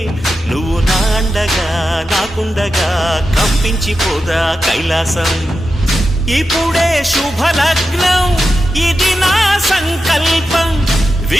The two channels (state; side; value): normal; both; correlation 0.90